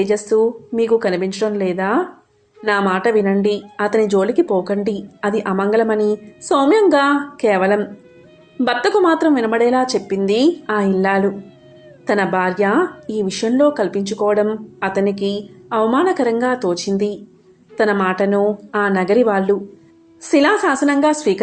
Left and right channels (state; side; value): identical; both; correlation 1.00